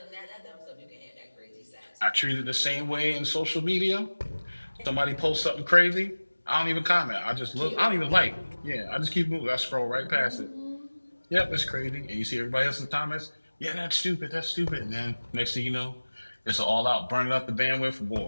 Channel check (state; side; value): inverted; both; correlation -1.00